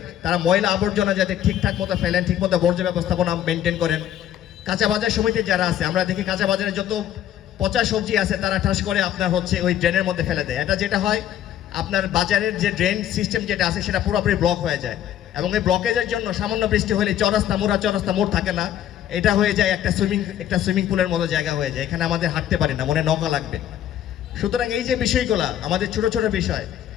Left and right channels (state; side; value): quieter; right; 11.1 dB